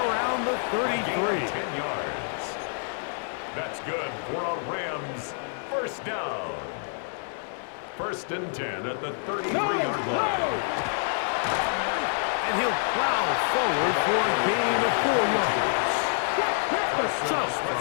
around the 33. 10 yards. That's good for a Rams first down. 1st and 10 at the 33-yard line. And he'll plow forward for a gain of 4 yards. So,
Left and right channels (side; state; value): right; silent; 60 dB below the other